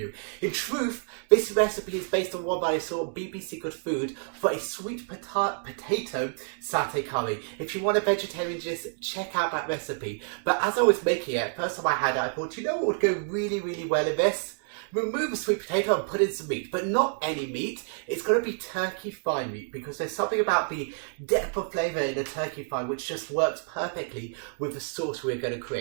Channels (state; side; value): silent; left; 59 dB below the other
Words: In truth, this recipe is based on one that I saw on BBC Good Food for a sweet potato satay curry. If you want a vegetarian, just check out that recipe. But as I was making it, first time I had it, I thought, you know what would go really, really well in this? Remove the sweet potato and put in some meat, but not any meat. It's going to be turkey thigh meat, because there's something about the depth of flavour in a turkey thigh which just works perfectly with the sauce we're going to